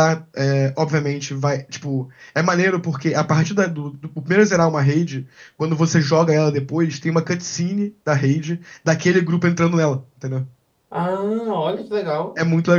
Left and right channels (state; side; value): identical; both; correlation 1.00